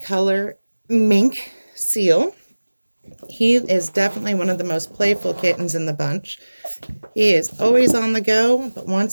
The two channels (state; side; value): inverted; both; correlation -1.00